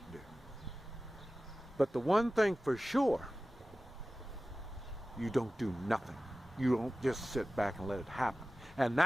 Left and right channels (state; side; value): normal; both; correlation 0.96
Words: do. But the one thing for sure, you don't do nothing. You don't just sit back and let it happen. And